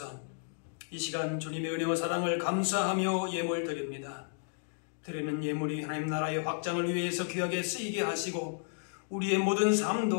이 시간 주님의 은혜와 사랑을 감사하며 예물 드립니다. 드리는 예물이 하나님 나라의 확장을 위해서 귀하게 쓰이게 하시고 우리의 모든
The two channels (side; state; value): right; silent; digital silence